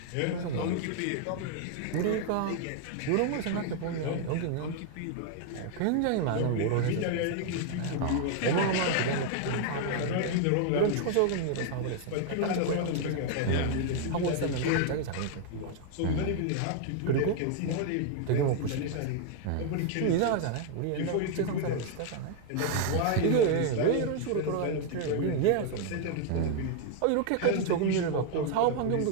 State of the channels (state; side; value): different; both; correlation 0.00